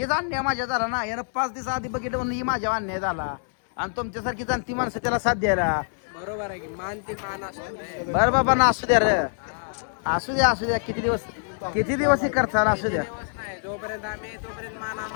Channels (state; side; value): silent; right; digital silence